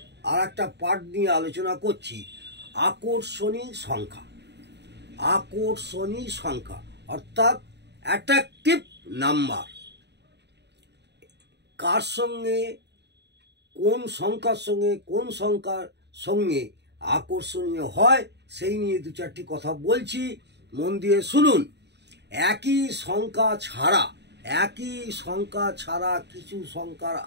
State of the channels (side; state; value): left; late; 0.50 ms